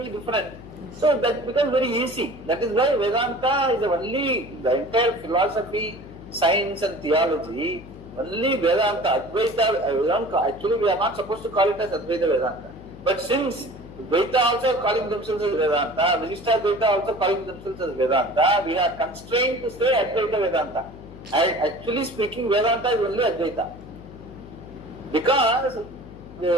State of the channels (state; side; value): noise; left; hum, 16 dB below the sound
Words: different. So that becomes very easy. That is why Vedanta is only the entire philosophy, science and theology. Only Vedanta, Advaita, actually we are not supposed to call it as Advaita Vedanta. But since Dvaita also calling themselves as Vedanta, Vishishta Dvaita also calling themselves as Vedanta, we are constrained to say Advaita Vedanta. Actually speaking, Vedanta is only Advaita. Because